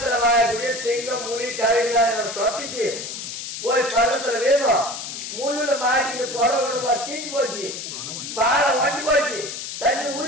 வாயக்கூடிய சிங்கம் முனி கரடிலாம் என்னோட தொட்டிச்சு போய் பழத்துல வேணும் முள்ளுல மாட்டிட்டு புடவை தீஞ்சு போச்சு, பாலை ஒட்டி போச்சு, தண்ணி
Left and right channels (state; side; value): noise; left; hiss, 7 dB below the sound